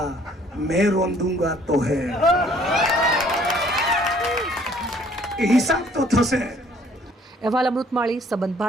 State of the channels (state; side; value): normal; both; correlation 0.59